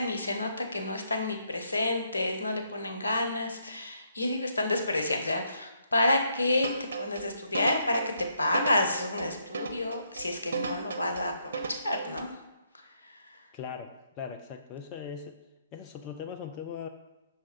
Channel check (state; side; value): inverted; both; correlation -0.74